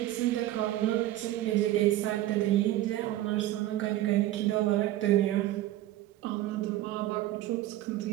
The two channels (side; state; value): left; quieter; 14.8 dB